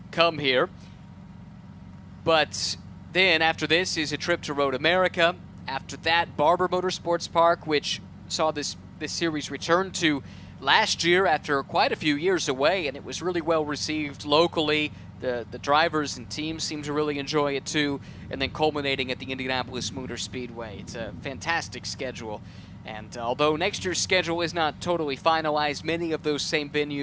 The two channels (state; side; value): identical; both; correlation 1.00